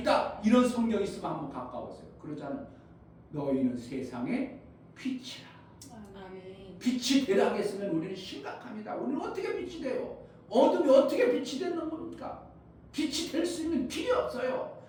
이런 성경 있으면 한번 가까워서요. 그러자는 너희는 세상의 빛이라. 아멘. 빛이 되라고 했으면 우리는 심각합니다. 우리는 어떻게 빛이 돼요? 어둠이 어떻게 빛이 되는 겁니까? 빛이 될 수 있는 길이 없어요.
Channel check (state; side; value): identical; both; correlation 1.00